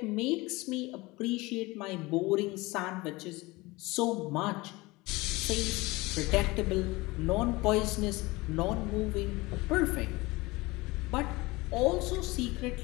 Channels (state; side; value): quieter; right; 22.2 dB